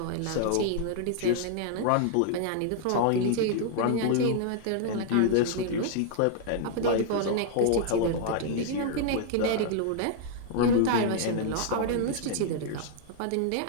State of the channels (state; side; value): different; both; correlation -0.01